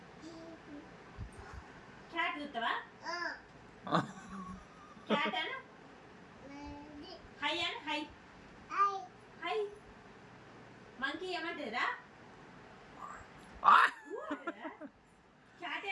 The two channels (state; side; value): identical; both; correlation 1.00